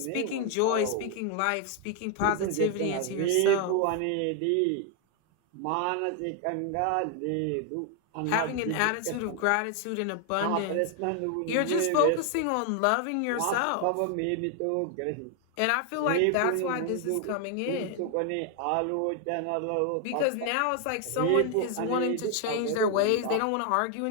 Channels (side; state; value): both; different; correlation 0.00